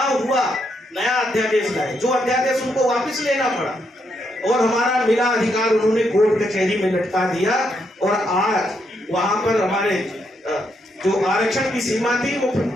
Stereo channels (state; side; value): normal; both; correlation 0.78